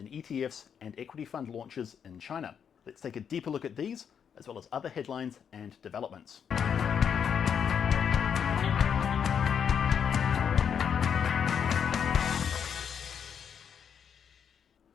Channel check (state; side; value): quieter; right; 7.6 dB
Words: ETFs and equity fund launches in China. Let's take a deeper look at these, as well as other headlines and developments.